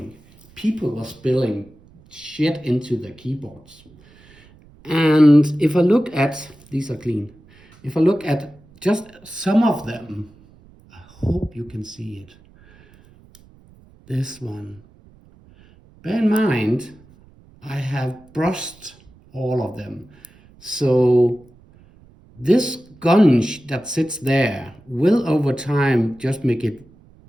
people were spilling shit into their keyboards. And if I look at, these are clean, if I look at just some of them, I hope you can see it. This one. Bear in mind, I have brushed all of them. So this gunge that sits there will over time just make it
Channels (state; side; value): noise; right; rumble, 27 dB below the sound